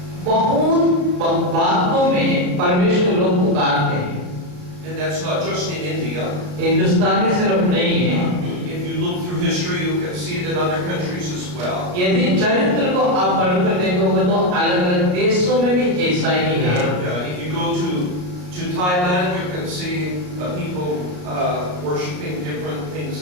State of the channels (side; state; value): left; late; 33 ms